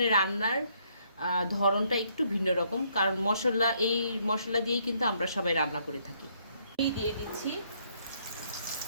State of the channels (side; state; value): both; inverted; correlation -0.69